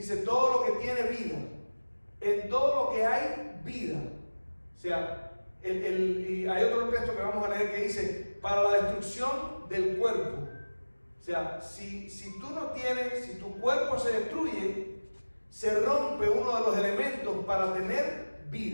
todo lo que tiene vida, en todo lo que hay vida. O sea, y hay otro texto que vamos a leer que dice, para la destrucción del cuerpo. O sea, si tú no tienes, si tu cuerpo se destruye, se rompe uno de los elementos para tener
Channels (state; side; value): inverted; both; correlation -1.00